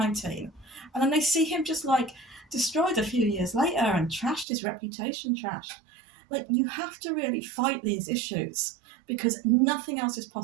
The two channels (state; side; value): drops out; left; at 4.5 s